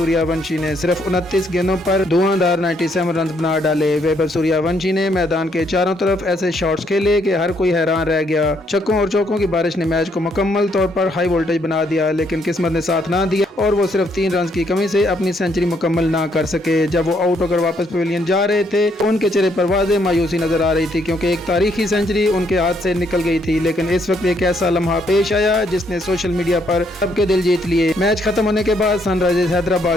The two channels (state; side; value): normal; both; correlation 0.71